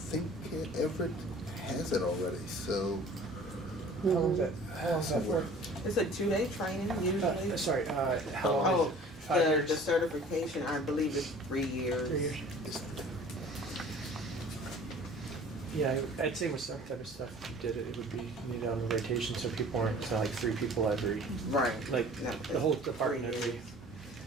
think Everett has it already, so. How long is that for? It's a 2-day training usually. Sorry, how long is it? 5 years? The certification, I believe, is 3 years. 3 years. Yeah, I'd say with some type of stuff, if you did it, it would be needed on the rotation, so people aren't, so like 3 people every. Right. Like, No, the whole department 3 every. years.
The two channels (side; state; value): both; normal; correlation 0.47